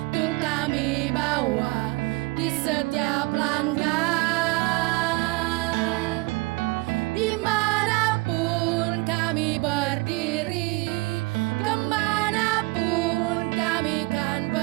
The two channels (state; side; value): quieter; left; 25.2 dB